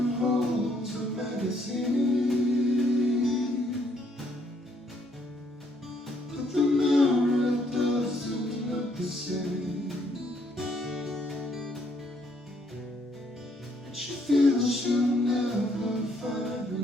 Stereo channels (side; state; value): both; normal; correlation 0.70